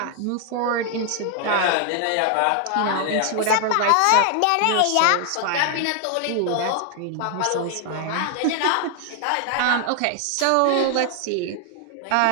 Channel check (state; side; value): different; both; correlation 0.00